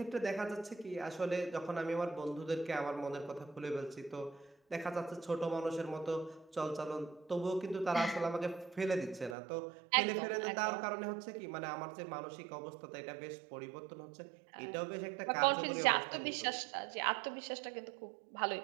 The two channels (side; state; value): left; drops out; at 9.3 s